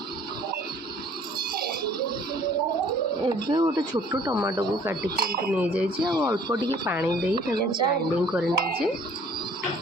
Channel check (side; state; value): both; normal; correlation 0.56